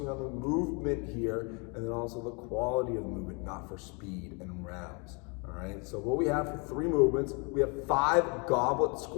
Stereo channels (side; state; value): right; quieter; 32.5 dB